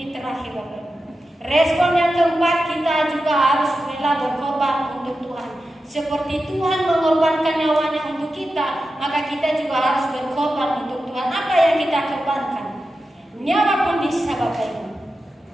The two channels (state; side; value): normal; both; correlation 0.91